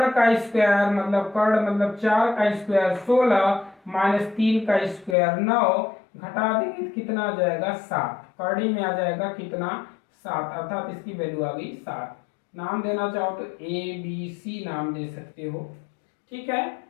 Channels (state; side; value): drops out; right; at 5.2 s